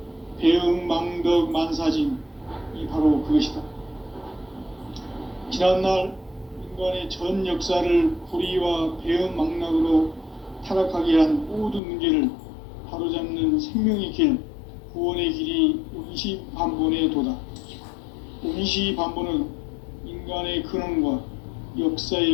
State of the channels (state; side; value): drops out; right; at 11.8 s